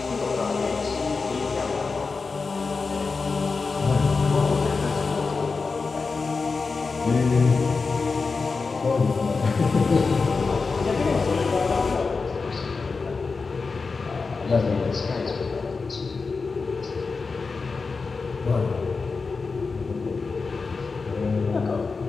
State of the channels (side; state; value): right; quieter; 4.4 dB